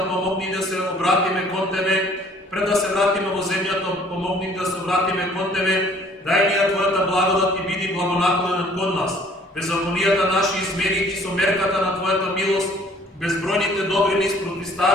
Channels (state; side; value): normal; both; correlation 0.56